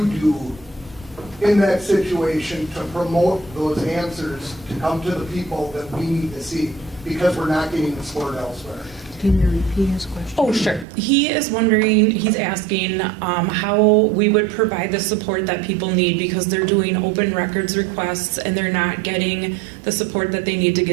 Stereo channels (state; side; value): drops out; left; at 10.9 s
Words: do in that situation to promote those answers to come to the people that we need to see, because we're not getting the support elsewhere? Can you repeat his question? Oh, sure. He is wondering, he's asking how we would provide the support that people need because they're doing open records requests and they're not getting the support that they need to